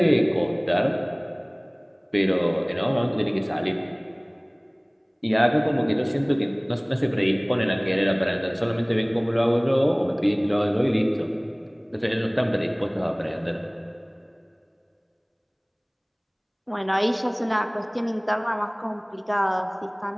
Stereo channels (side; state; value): both; identical; correlation 1.00